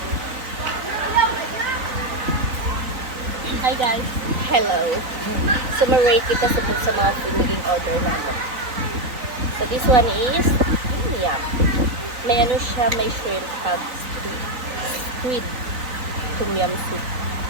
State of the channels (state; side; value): late; left; 4.0 ms